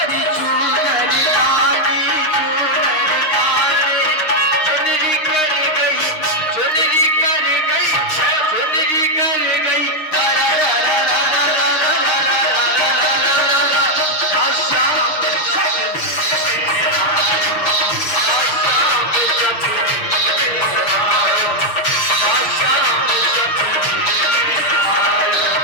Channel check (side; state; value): right; late; 6.5 ms